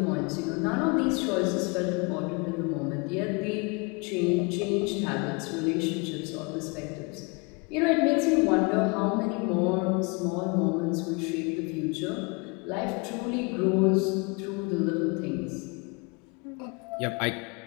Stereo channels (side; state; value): right; quieter; 30.5 dB